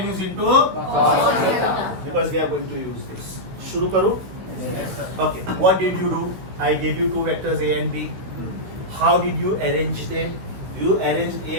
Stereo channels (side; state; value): left; late; 16 ms